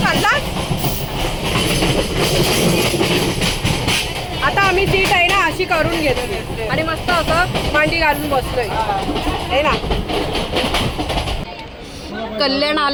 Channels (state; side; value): identical; both; correlation 1.00